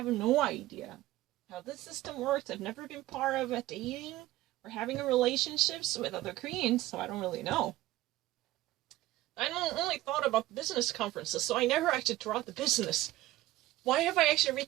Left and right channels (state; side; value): quieter; left; 16.5 dB